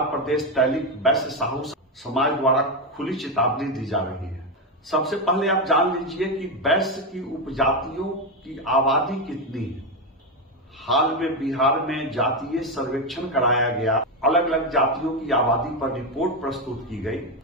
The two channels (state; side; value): normal; both; correlation 0.10